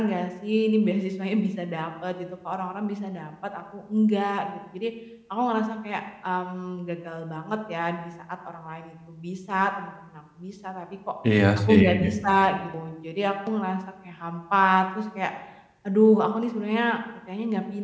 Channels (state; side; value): identical; both; correlation 1.00